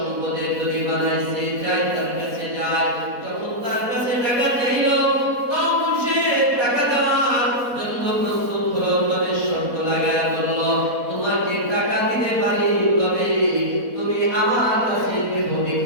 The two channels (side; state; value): left; late; 4.1 ms